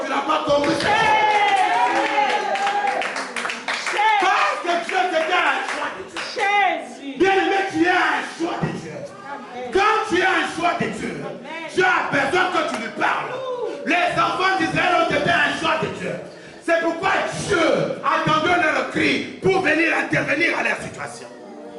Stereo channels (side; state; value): both; identical; correlation 1.00